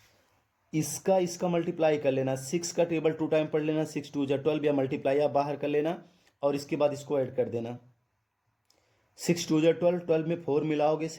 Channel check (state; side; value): identical; both; correlation 1.00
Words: इसका मल्टीप्लाई कर लेना, 6 का टेबल 2 टाइम पढ़ लेना, 6 2 जा 12, या मल्टीप्लाई आप बाहर कर लेना, और इसके बाद इसको ऐड कर देना, 6 2 जा 12, 12 में 4 मिलाओगे